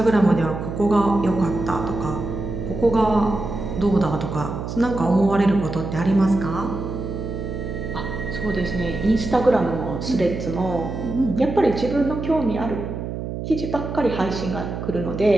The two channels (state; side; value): noise; right; hum, 6 dB below the sound